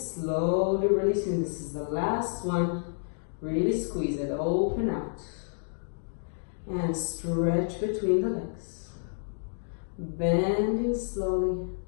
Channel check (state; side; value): silent; right; digital silence